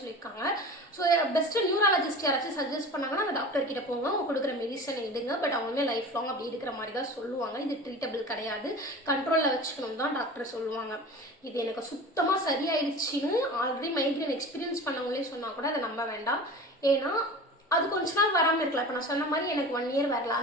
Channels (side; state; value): both; normal; correlation 0.36